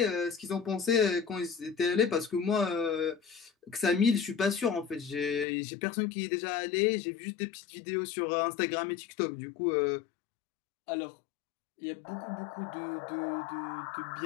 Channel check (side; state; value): right; drops out; at 5.5 s